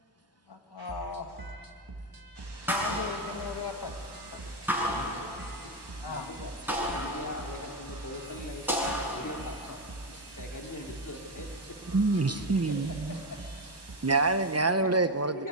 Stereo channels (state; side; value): normal; both; correlation 0.08